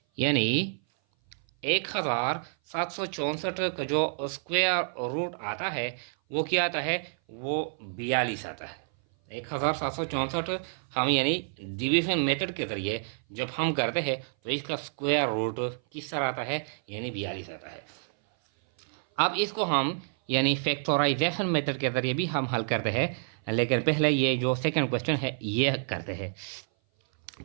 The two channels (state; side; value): silent; left; 57 dB below the other